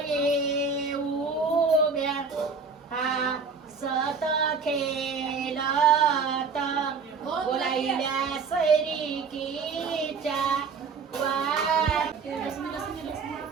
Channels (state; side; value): quieter; left; 5.1 dB